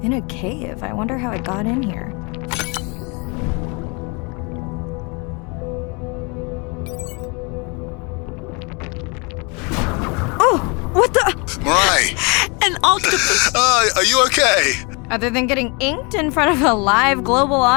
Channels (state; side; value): quieter; right; 30.9 dB